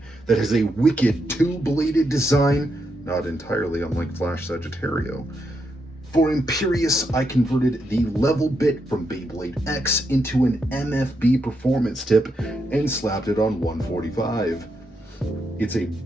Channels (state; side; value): normal; both; correlation 0.81